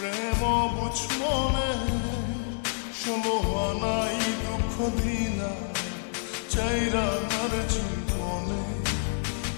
বুঝ মনে, ষোলো আনাই দুঃখ দিনা চাইরা তার জীবনে।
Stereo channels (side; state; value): right; silent; digital silence